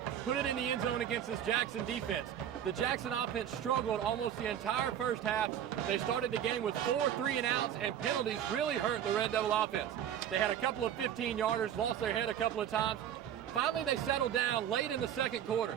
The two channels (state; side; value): quieter; left; 9.9 dB